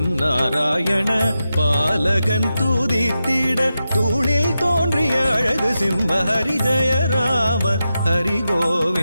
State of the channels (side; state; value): both; inverted; correlation -0.90